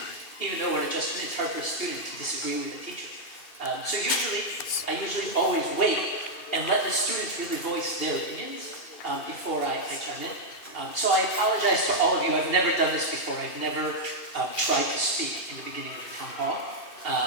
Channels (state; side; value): late; right; 2.6 ms